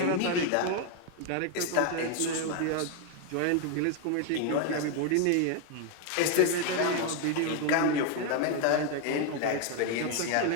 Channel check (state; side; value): different; both; correlation 0.01